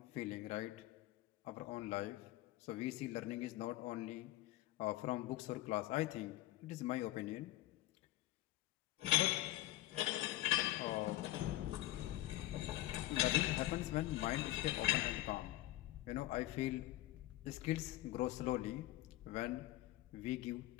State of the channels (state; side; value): quieter; right; 15.8 dB